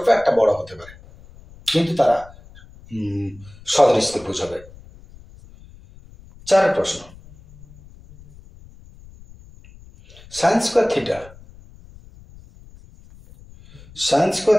একটা বড় হতে পারে, কিন্তু তারা সদৃশ ত্রিভুজ হবে। 4 প্রশ্ন, sine square theta, sine square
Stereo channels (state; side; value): noise; left; rumble, 22 dB below the sound